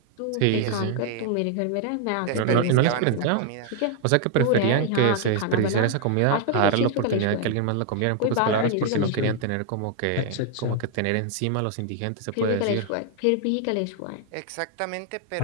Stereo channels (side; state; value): both; different; correlation 0.00